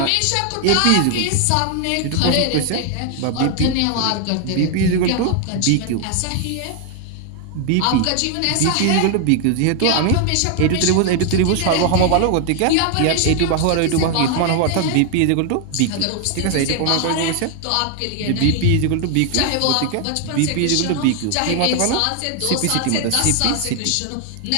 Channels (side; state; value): both; different; correlation 0.00